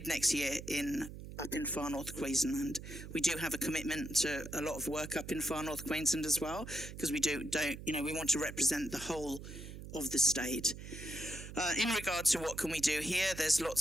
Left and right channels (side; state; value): right; noise; hum, 11 dB below the sound